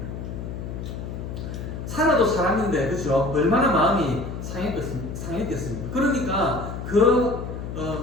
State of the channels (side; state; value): left; noise; hum, 7 dB below the sound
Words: 사라도 사람인데 그죠? 얼마나 마음이 상했겠습니까? 그러니까 그